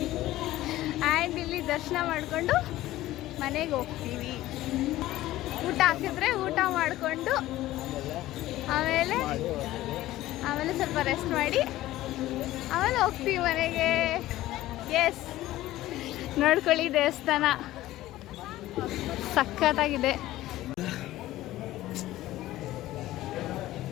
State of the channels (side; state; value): right; quieter; 15.7 dB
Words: ಆ್ಯಂಡ್ ಇಲ್ಲಿ ದರ್ಶನ ಮಾಡಿಕೊಂಡು ಮನೆಗೆ ಹೋಗ್ತೀವಿ. ಊಟ ಹಾಕಿದ್ರೆ ಊಟ ಮಾಡಿಕೊಂಡು ಆಮೇಲೆ ಸ್ವಲ್ಪ ರೆಸ್ಟ್ ಮಾಡಿ ಆಮೇಲೆ ಹೋಗ್ತೀವಿ ಮನೆಗೆ. ಎಸ್, ನೋಡ್ಕೊಳ್ಳಿ, ದೇವಸ್ಥಾನ ಸಖತ್ತಾಗಿದೆ.